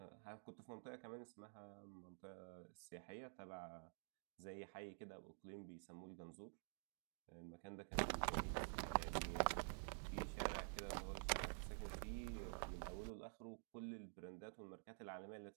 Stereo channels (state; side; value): silent; left; digital silence